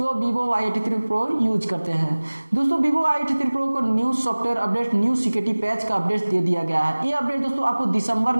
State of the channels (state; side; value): inverted; both; correlation -1.00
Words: वीवो Y83 प्रो यूज करते हैं। दोस्तों वीवो Y83 प्रो को new software update, new security patch का अपडेट दे दिया गया है। ये अपडेट दोस्तों आपको दिसंबर